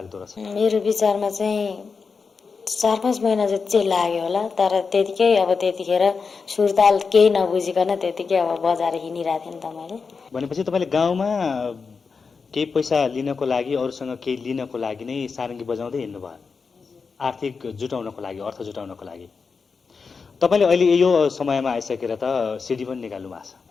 रहेछ? मेरो विचारमा चाहिँ 4-5 महिना जति चाहिँ लाग्यो होला। तर त्यतिखेर सुरताल केही नबुझिकन त्यतिकै अब बजाएर हिँडिरहेको थिएँ नि त मैले। भनेपछि तपाईँले गाउँमा केही पैसा लिनको लागि, अरूसँग केही लिनको लागि नै सारङ्गी बजाउँदै हिँड्नुभयो, आर्थिक जुटाउनको लागि, अर्थ जुटाउनको लागि। तपाईँले अहिले यो समयमा आइसकेर त सिडी पनि निकाल्नु भएको छ?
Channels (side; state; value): right; quieter; 5.1 dB